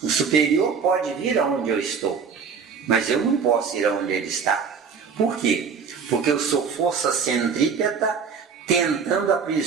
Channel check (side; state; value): left; quieter; 5.9 dB